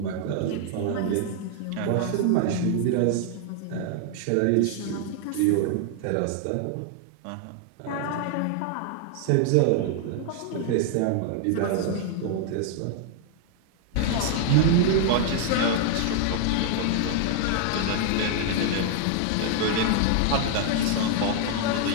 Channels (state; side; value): different; both; correlation 0.00